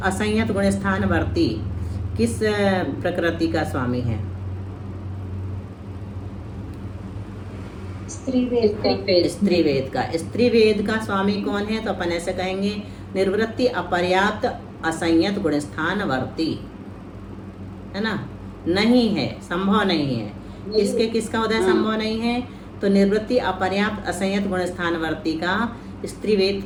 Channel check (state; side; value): identical; both; correlation 1.00